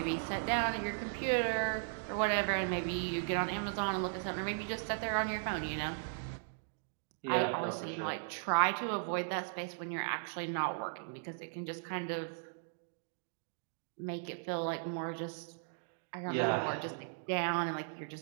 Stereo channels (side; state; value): left; silent; digital silence